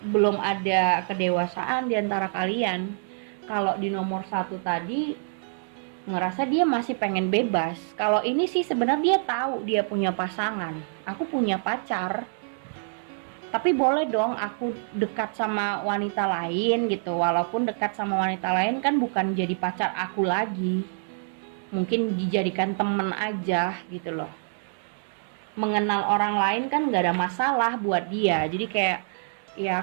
ada kedewasaan di antara kalian. Kalau di nomor 1 tadi ngerasa dia masih pengen bebas. Kalau ini sih sebenarnya dia tahu dia punya pasangan. Aku punya pacar, tapi boleh dong aku dekat sama wanita lain gitu. Walaupun dekat sama wanita lain kan bukan jadi pacar aku lagi, mungkin dijadikan temen aja gitu loh. Mengenal orang lain kan gak ada masalah buat dia. Jadi kayak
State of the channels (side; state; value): left; silent; digital silence